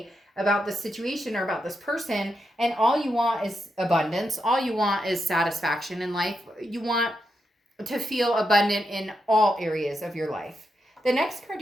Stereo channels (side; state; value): both; normal; correlation 0.84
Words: about the situation or about this person, and all you want is abundance. All you want is satisfaction in life. You want to feel abundant in all areas of your life. The next card